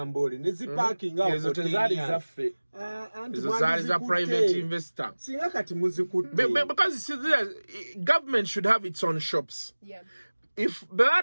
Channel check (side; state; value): both; inverted; correlation -1.00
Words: ne ziparking awo ezo tezaali zaffe ezo zaali za private investor singa kati muzikutte because government should have its own shops. If baba